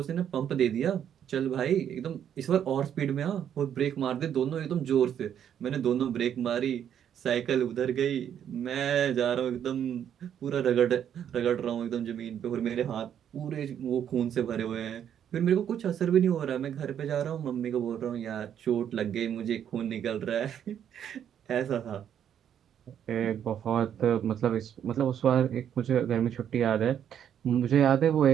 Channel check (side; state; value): left; quieter; 9.3 dB